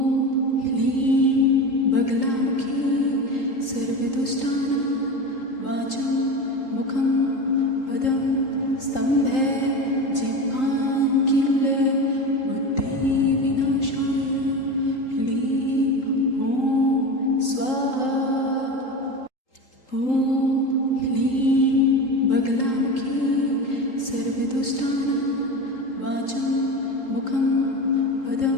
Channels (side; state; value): right; late; 3.8 ms